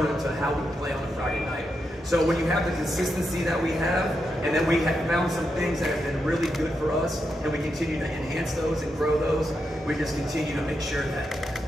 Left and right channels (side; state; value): both; normal; correlation 0.85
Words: to how we play on a Friday night. So when you have the consistency that we have, and then we have found some things that have been really good for us, and we continue to enhance those and grow those, we just continue to make sure that